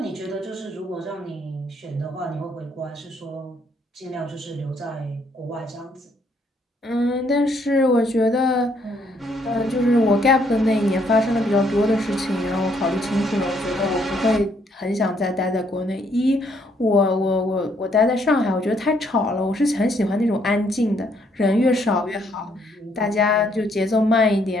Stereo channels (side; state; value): both; normal; correlation 0.69